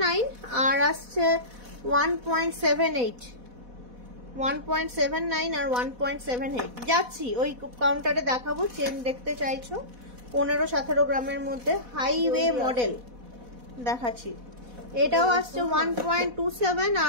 আর আসছে 1.78, 1.79 আর 1.78। যাচ্ছি ওই কাউন্টারে দেখাবো। চেন দেখতে চাইছো 15-17 গ্রামের মধ্যে হাইওয়ে মডেল দেখাচ্ছি। এটাও আসছে 1.27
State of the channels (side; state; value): left; late; 4.1 ms